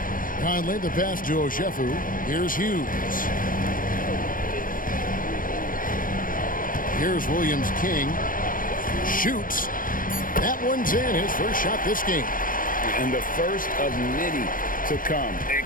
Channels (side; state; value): right; late; 0.40 ms